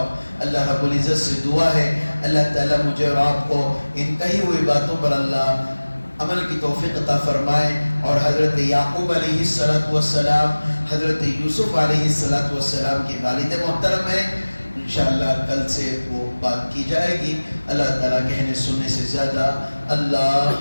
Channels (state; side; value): inverted; both; correlation -1.00